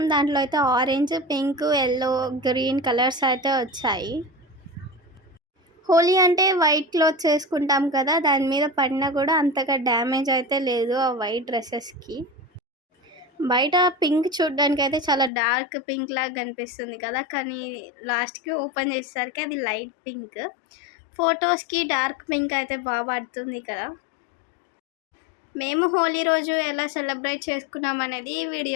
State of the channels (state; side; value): drops out; right; at 15.3 s